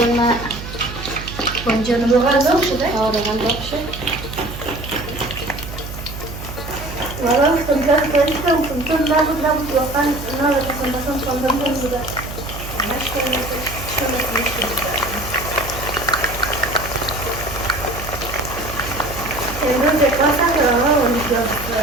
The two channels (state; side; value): noise; right; hum, 10 dB below the sound